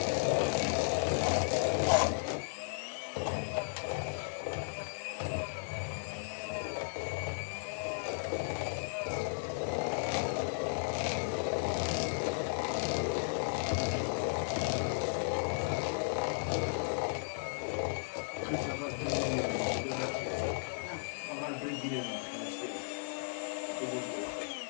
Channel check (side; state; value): right; silent; digital silence